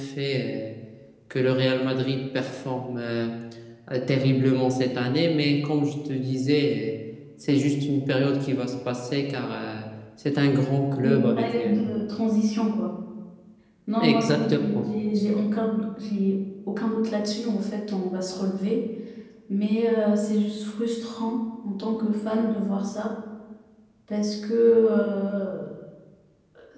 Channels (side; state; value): both; identical; correlation 1.00